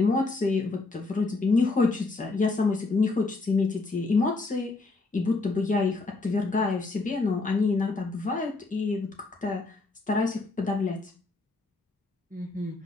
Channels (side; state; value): right; quieter; 3.5 dB